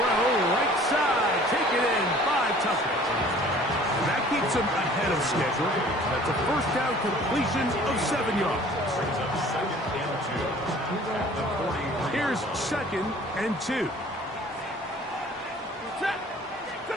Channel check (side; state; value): both; normal; correlation 0.51